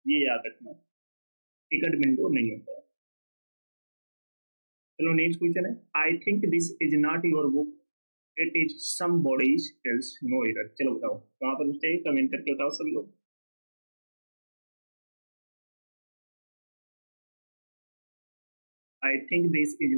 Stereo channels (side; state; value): both; inverted; correlation -1.00